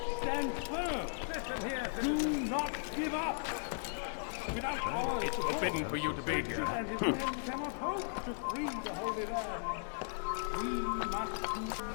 Stand firm. Do not give up. Without our It's forbidden for you to be here. and his men cannot hope to free the Holy Land. We must do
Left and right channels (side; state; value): right; silent; digital silence